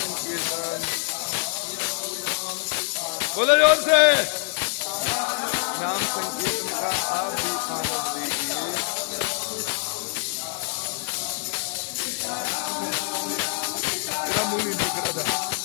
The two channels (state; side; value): silent; right; 60 dB below the other